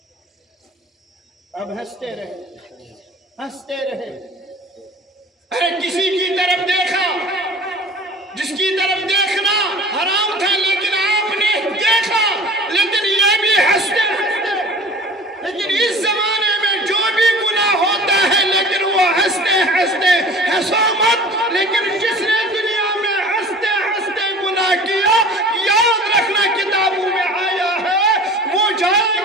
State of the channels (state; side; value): normal; both; correlation 0.42